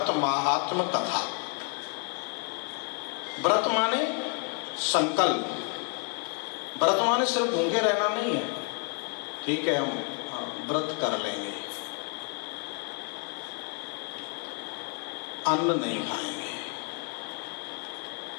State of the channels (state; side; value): quieter; right; 37.9 dB